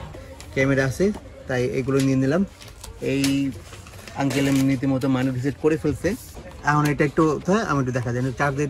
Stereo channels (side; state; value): both; identical; correlation 1.00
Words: ক্যামেরা আছে তাই এগুলো নিয়ে নিলাম। এই আঙ্কেল নীতিমতো মানি রিসেট করে ফেলছে। এখন এটা একটু আমি একটু দেখা দেন, চার্জ দিয়ে